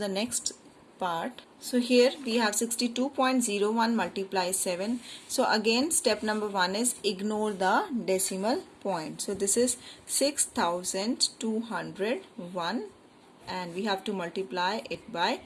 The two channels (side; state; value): both; identical; correlation 1.00